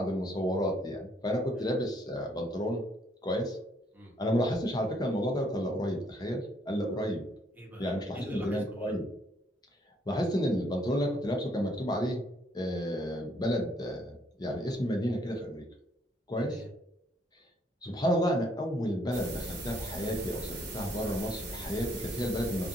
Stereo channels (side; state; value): both; normal; correlation 0.68